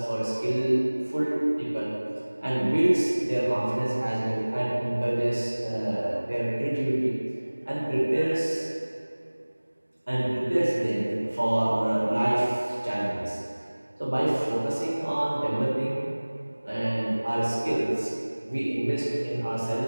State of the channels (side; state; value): both; inverted; correlation -1.00